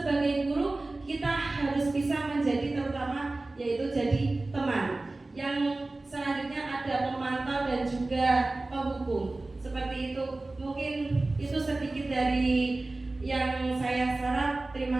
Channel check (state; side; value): quieter; left; 3.0 dB